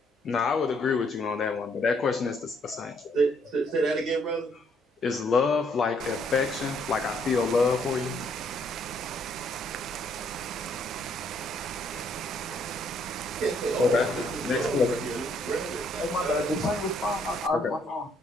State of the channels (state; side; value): normal; both; correlation 0.69